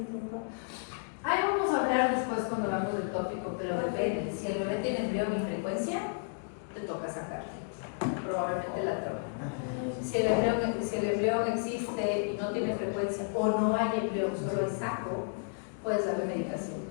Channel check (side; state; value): right; silent; digital silence